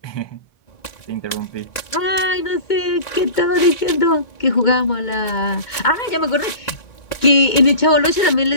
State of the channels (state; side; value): late; right; 1.9 ms